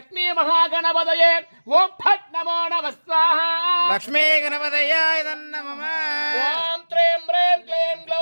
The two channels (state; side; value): inverted; both; correlation -1.00